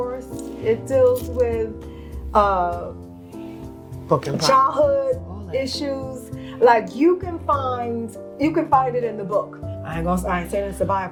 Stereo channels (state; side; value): identical; both; correlation 1.00